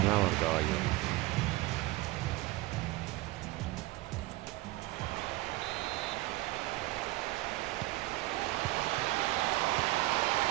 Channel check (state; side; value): quieter; left; 19.0 dB